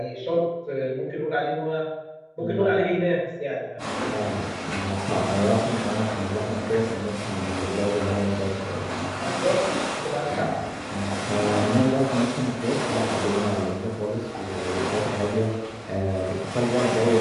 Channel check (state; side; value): identical; both; correlation 1.00